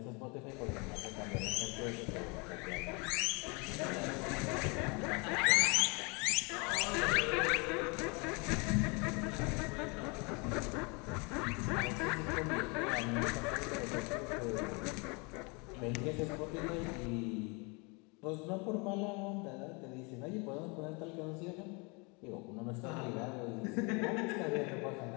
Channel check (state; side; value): quieter; right; 30.5 dB